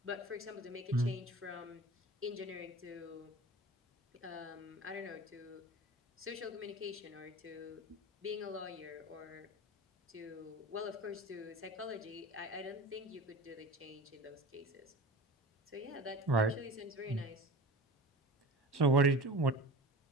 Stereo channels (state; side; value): normal; both; correlation 0.35